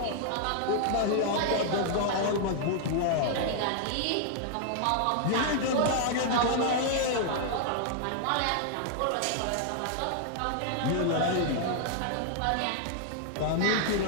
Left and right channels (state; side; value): different; both; correlation 0.00